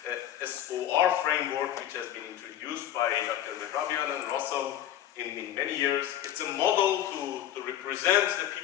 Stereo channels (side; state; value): right; quieter; 11.5 dB